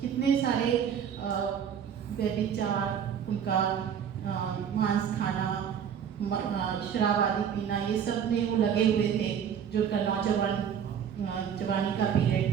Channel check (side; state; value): left; quieter; 8.2 dB